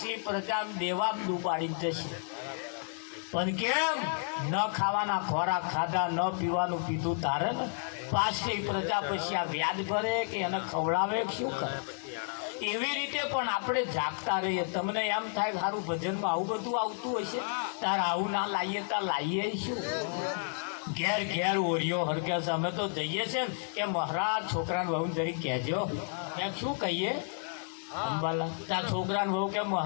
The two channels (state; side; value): silent; right; 57 dB below the other